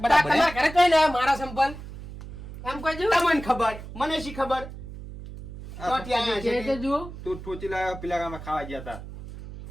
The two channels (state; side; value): noise; right; hum, 12 dB below the sound